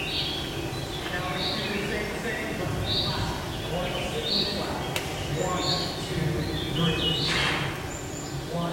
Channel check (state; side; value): identical; both; correlation 1.00